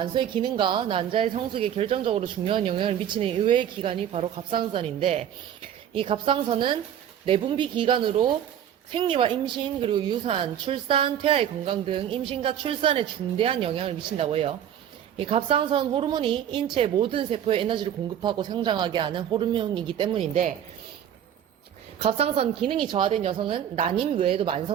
기능과 난자의 성숙에 결정적으로 중요한 영향을 미치는 의외의 기관이 바로 갑상선인데, 이 갑상선은 내분비 기관으로 생리와 임신, 그리고 유산, 출산, 태아의 건강 등 임신과 출산에 중대한 영향을 미친다고 해요. 이 갑상선 호르몬이 인체의 모든 세포에 에너지를 공급하고 성장하게 하는 호르몬이기 때문인데, 갑상선 기능이 저하된 여성은 난임 외에도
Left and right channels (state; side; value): quieter; left; 9.9 dB